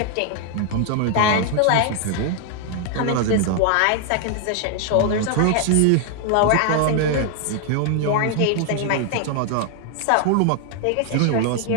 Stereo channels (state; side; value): different; both; correlation 0.00